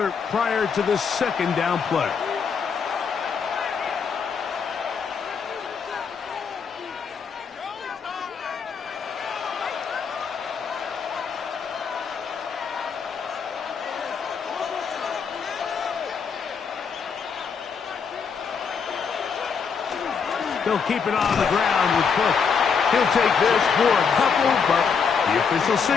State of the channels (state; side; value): quieter; right; 6.1 dB